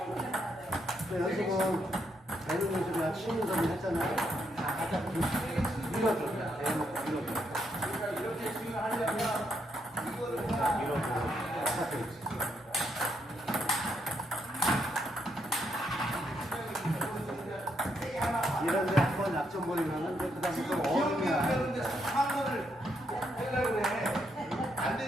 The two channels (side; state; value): both; normal; correlation 0.77